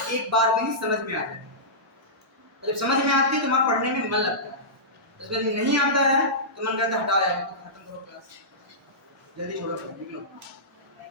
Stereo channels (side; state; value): both; normal; correlation -0.17